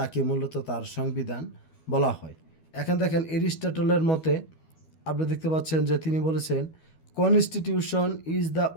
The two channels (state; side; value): late; right; 12 ms